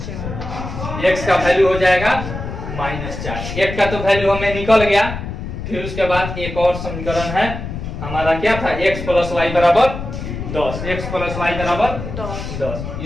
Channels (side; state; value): left; noise; rumble, 7 dB below the sound